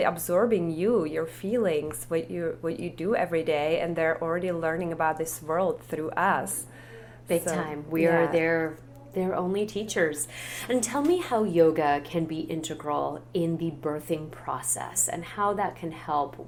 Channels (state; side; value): identical; both; correlation 1.00